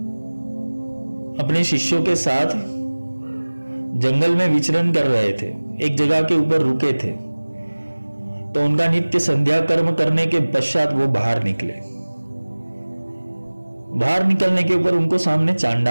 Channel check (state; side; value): inverted; both; correlation -1.00